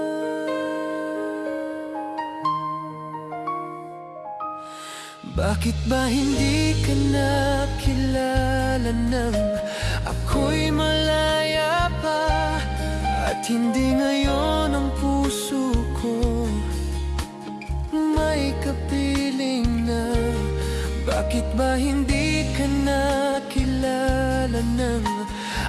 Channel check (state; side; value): identical; both; correlation 1.00